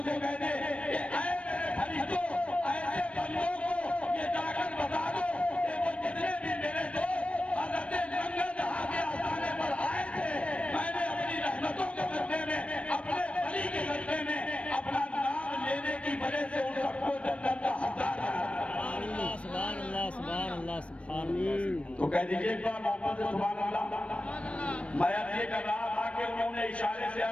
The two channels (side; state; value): right; late; 0.062 ms